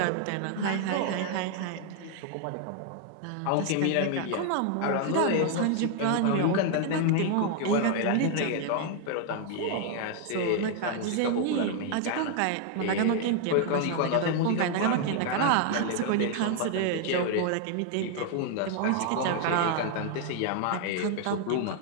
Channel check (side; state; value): both; different; correlation 0.00